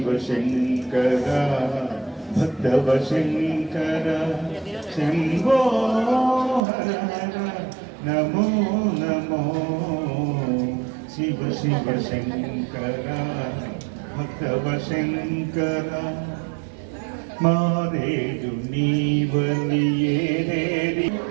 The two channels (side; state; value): left; drops out; at 6.6 s